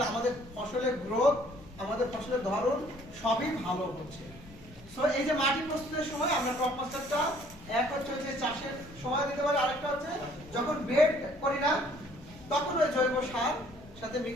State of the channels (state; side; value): noise; left; rumble, 21 dB below the sound